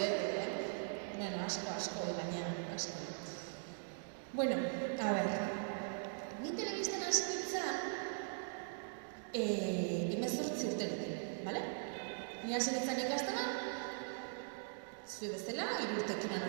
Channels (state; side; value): silent; left; digital silence